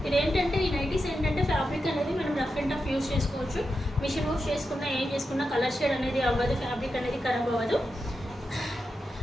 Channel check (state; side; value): normal; both; correlation 0.88